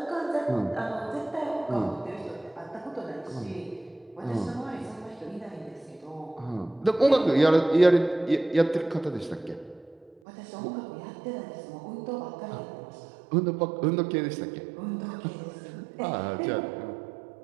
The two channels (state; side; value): drops out; left; at 10.2 s